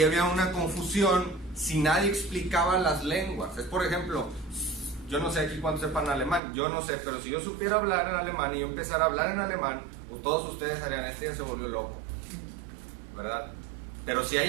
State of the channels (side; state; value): left; drops out; at 6.4 s